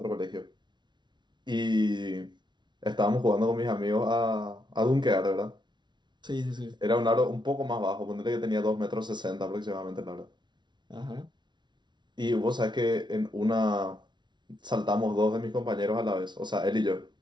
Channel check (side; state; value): left; late; 0.22 ms